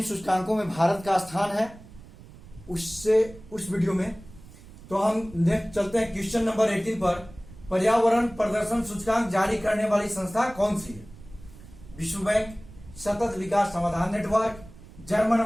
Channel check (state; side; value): noise; right; rumble, 19 dB below the sound